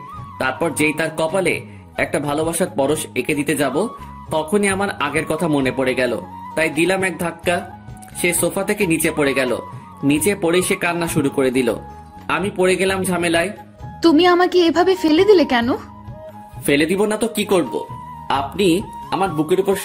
তারপর যেই তার কপালে একটা ভালোবাসার পরশ এঁকে দিতে যাব, তখনই আমার আগের কথা মনে পড়ে গেল। তাই দিলাম এক ধাক্কা। সে সোফা থেকে নিচে পড়ে গেল। নিচে পড়ে সে কান্না শুরু করে দিল। আমি পড়ে গেলাম ঝামেলায়। তুমি আমাকে এভাবে ফেলে দিলে কেন? ফেলে দিব না তো কি করব? আপনি আমার বুকের উপর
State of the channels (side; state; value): both; identical; correlation 1.00